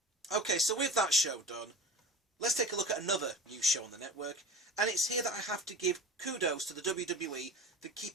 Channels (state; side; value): normal; both; correlation 0.37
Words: Okay, so with that show done, let's take a look at another new show on the network, and it's here that I have to give kudos to the WWE for